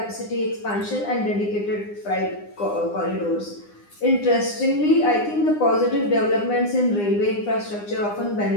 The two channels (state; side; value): late; right; 9.8 ms